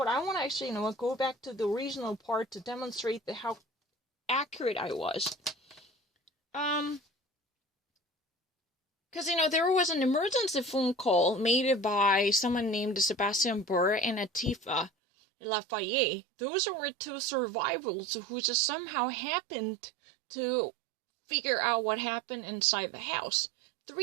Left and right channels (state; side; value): drops out; left; at 14.9 s